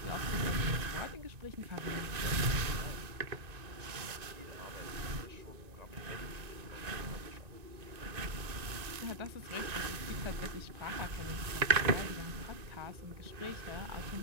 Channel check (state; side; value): late; left; 1.9 ms